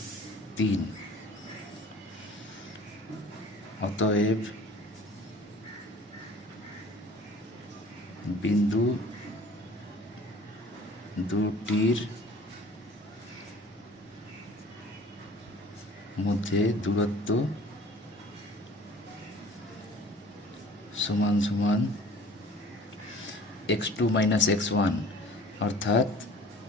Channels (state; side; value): normal; both; correlation 0.48